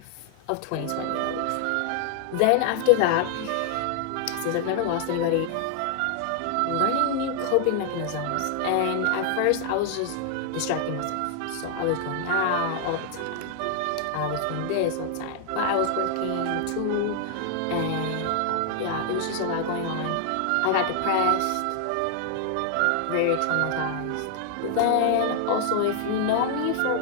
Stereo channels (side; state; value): both; different; correlation 0.00